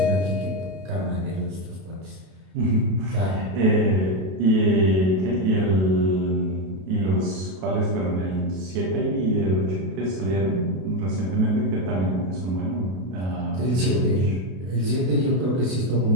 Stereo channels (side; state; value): left; late; 32 ms